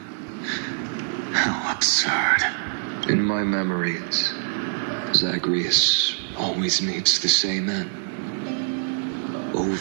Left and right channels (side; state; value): left; silent; digital silence